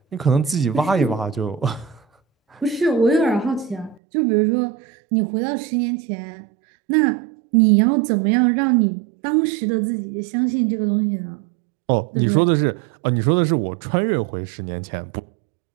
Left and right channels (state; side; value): drops out; left; at 4.0 s